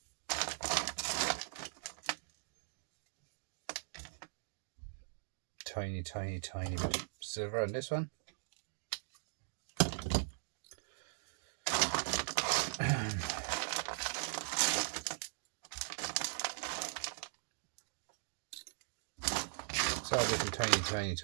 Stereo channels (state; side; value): silent; left; digital silence